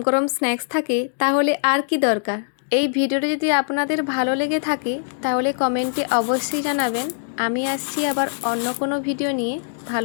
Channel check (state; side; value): silent; right; digital silence